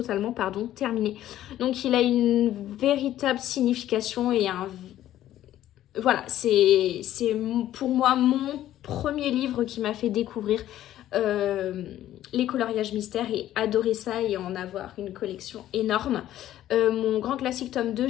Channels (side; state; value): right; quieter; 12.9 dB